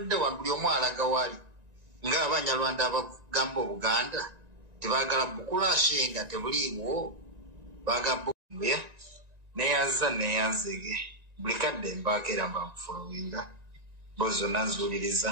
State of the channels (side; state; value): left; late; 1.9 ms